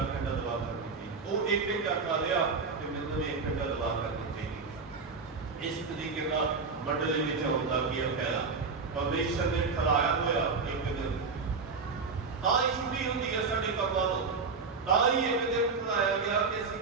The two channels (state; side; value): quieter; left; 4.7 dB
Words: ਘੰਟਾ ਦੁਆ ਕਰਨੀ ਚਾਹੀਦੀ। ਉਹ ਇੱਕ ਘੰਟਾ ਕਰ ਲਿਆ ਤੇ ਮੈਨੂੰ ਵੀ 1 ਘੰਟਾ ਦੁਆ ਕਰਨੀ ਚਾਹੀਦੀ। ਇਸ ਤਰੀਕੇ ਨਾਲ ਮੰਡਲੀ ਵਿੱਚ ਹੁੰਦਾ ਕੀ ਫਾਇਦਾ। ਪਰਮੇਸ਼ਰ ਨੇ ਠਹਿਰਾਇਆ ਹੋਇਆ ਇੱਕ ਦਿਨ, ਤਾਂ ਹੀ ਛੁੱਟੀ ਹੁੰਦੀ ਹੈ ਸਾਡੇ ਕੰਮਾਂ ਤੋਂ। ਤਾਂ ਹੀ ਇੱਕ ਦਿਨ ਠਹਿਰਾਇਆ ਗਿਆ ਕਿ ਅਸੀਂ